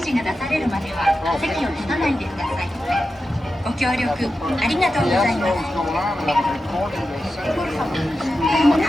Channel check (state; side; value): normal; both; correlation 0.91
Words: が出されるまでは席を立たないでください。ご協力ありがとうございます。